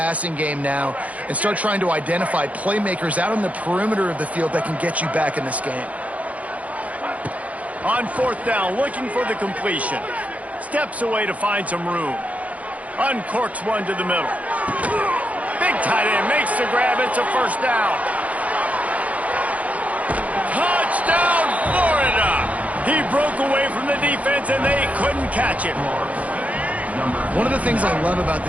game now and start trying to identify playmakers out on the perimeter of the field that can get you back in this game. On 4th down, looking for the completion. Steps away to find some room. Uncorks one to the middle. Big tight end makes the grab. It's a 1st down. Touchdown, Florida! He broke away from the defense, and they couldn't catch him. One of the things I love about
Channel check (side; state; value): left; late; 0.068 ms